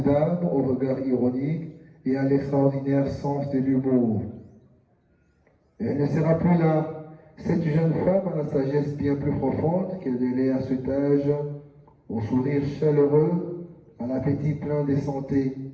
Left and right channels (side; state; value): both; identical; correlation 1.00